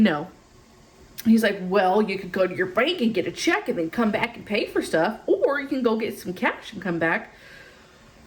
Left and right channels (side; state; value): both; identical; correlation 1.00